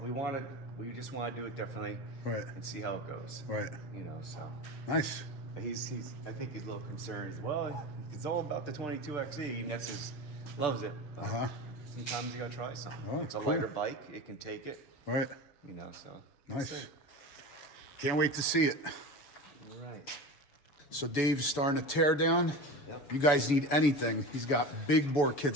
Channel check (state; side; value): late; right; 7.0 ms